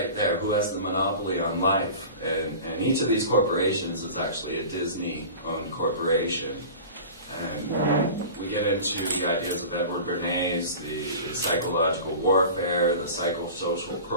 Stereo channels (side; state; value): both; inverted; correlation -0.37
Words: there, who has the monopoly on life? And each of these corporations is actually a Disney-owned corporation. And we get into the ideas of Edward Bernays, the psychological warfare, the psychosocial